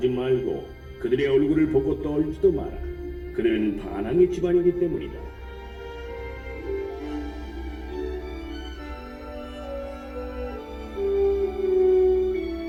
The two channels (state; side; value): identical; both; correlation 1.00